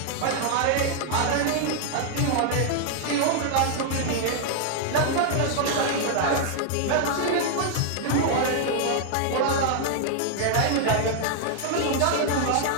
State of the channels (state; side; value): different; both; correlation 0.00